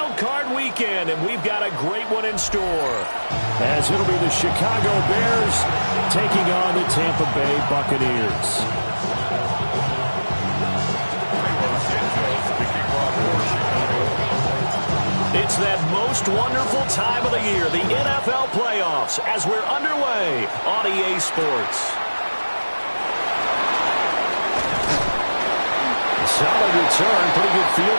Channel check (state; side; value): inverted; both; correlation -1.00